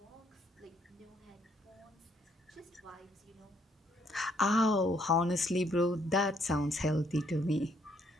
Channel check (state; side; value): normal; both; correlation 0.69